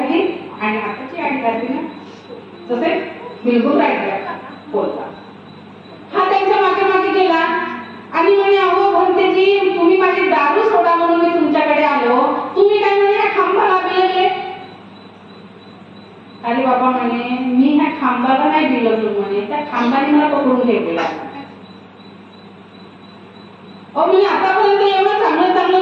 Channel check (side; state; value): both; identical; correlation 1.00